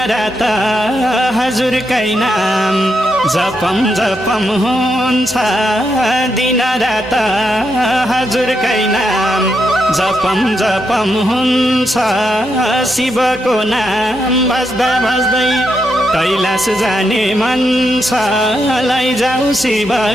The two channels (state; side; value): normal; both; correlation 0.82